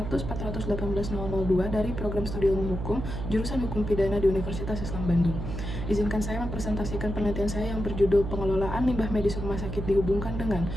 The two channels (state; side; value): noise; right; hum, 5 dB below the sound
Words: dari Program Studi Ilmu Hukum, jurusan Hukum Pidana di Universitas Islam Bandung. Izinkan saya mempresentasikan penelitian saya yang berjudul Pengelolaan Limbah Medis Rumah Sakit dihubungkan dengan